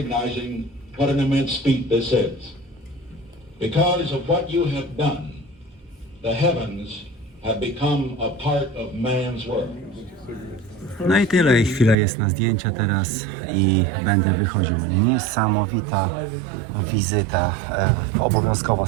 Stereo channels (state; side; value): drops out; left; at 12.0 s